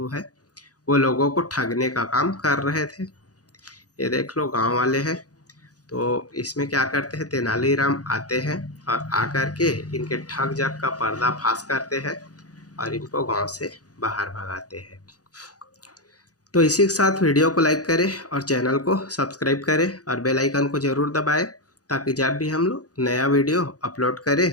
है वो लोगों को ठगने का काम कर रहे थे। ये देख लो गांव वाले हैं। तो इसमें क्या करते हैं, तेनालीराम आते हैं और आकर के इनके ठग जग का पर्दाफाश करते हैं और इनको गांव से बाहर भगाते हैं। तो इसी के साथ वीडियो को लाइक करें और चैनल को सब्सक्राइब करें और बेल आइकन को ज़रूर दबाएं ताकि जब भी हम लोग नया वीडियो अपलोड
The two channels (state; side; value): late; right; 0.67 ms